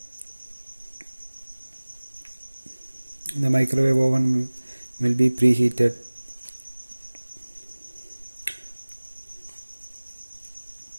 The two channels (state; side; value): inverted; both; correlation -1.00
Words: The microwave oven will be preheated